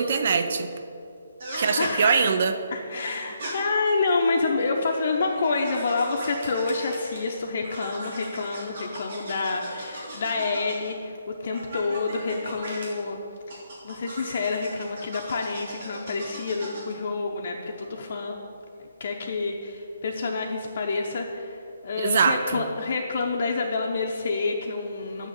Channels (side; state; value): both; inverted; correlation -0.74